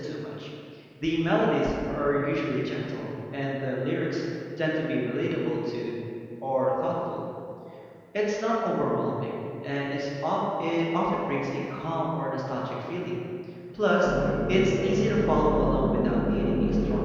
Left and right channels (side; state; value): both; identical; correlation 1.00